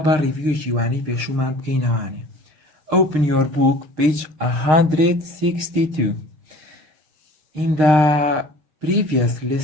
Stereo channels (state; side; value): late; left; 6.4 ms